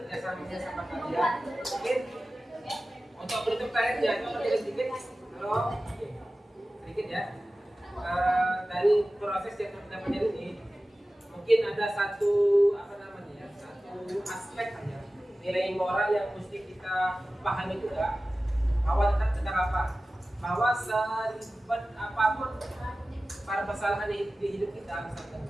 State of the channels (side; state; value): both; normal; correlation 0.96